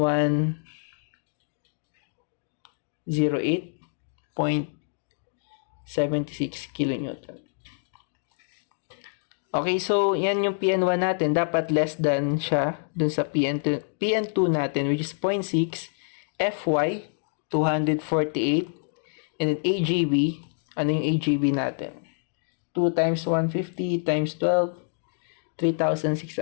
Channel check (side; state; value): right; silent; 60 dB below the other